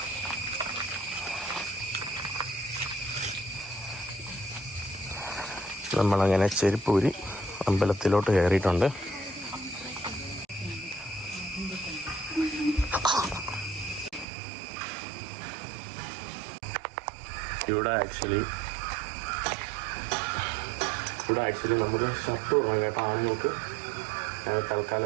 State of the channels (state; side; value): drops out; left; at 14.2 s